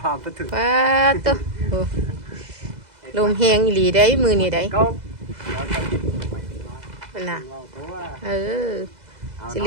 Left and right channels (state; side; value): late; left; 2.0 ms